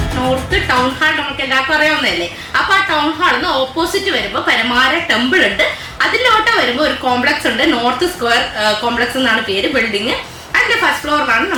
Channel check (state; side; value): identical; both; correlation 1.00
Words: നോർത്ത് ടൗൺ ഹാൾ നമുക്ക് എല്ലാവർക്കും അറിയാവുന്നതല്ലേ. അപ്പൊ ആ ടൗൺ ഹാളിന്ന് ഓപ്പോസിറ്റ് വരുമ്പോൾ പരമാര ടെമ്പിൾ ഉണ്ട്. അതിലോട്ട് വരുമ്പോൾ ഒരു കോംപ്ലക്സ് ഉണ്ട്, നോർത്ത് സ്ക്വയർ കോംപ്ലക്സ് എന്നാണ് പേര് ബിൽഡിംഗ്. അതിന്റെ ഫസ്റ്റ് ഫ്ലോറിലാണ്